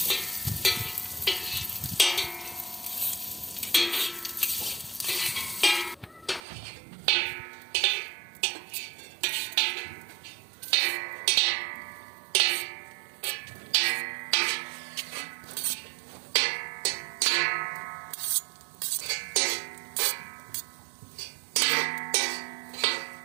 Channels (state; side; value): drops out; left; at 6.4 s